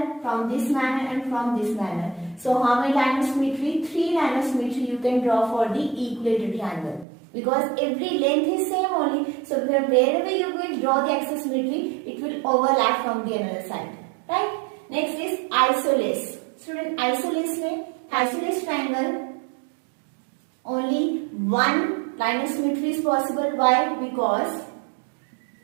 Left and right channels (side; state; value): left; drops out; at 7.1 s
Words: from this manner and from this manner. So how many lines of symmetry? 3 lines of symmetry you can draw for the equilateral triangle. Because every length is same only. So wherever you will draw the axis symmetry, it will overlap from the another side. Right? Next is isosceles. Student, isosceles triangle, only one line of symmetry is possible. Why? Because